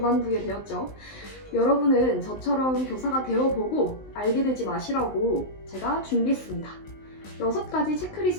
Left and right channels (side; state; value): right; late; 19 ms